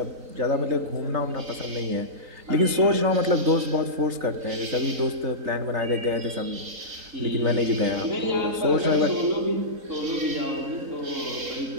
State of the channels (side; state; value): left; late; 3.9 ms